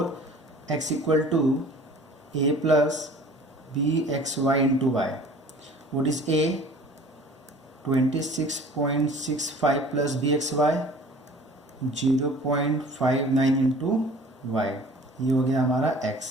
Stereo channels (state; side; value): normal; both; correlation 0.47